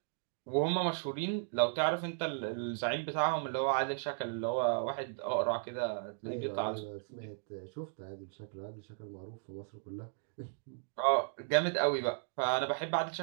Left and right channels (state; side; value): silent; left; digital silence